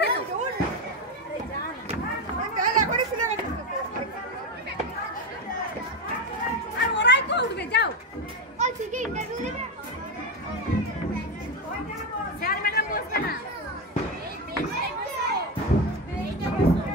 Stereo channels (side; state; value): both; normal; correlation 0.14